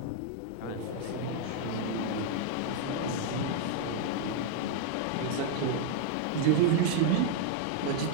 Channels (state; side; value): different; both; correlation 0.00